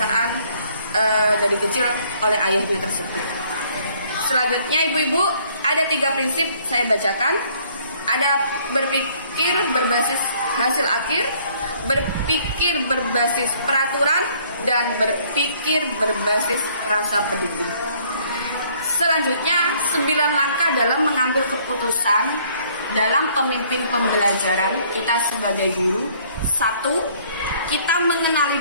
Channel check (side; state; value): both; inverted; correlation -0.61